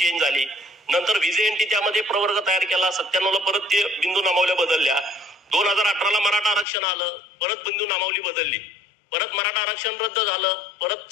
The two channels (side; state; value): right; drops out; at 6.7 s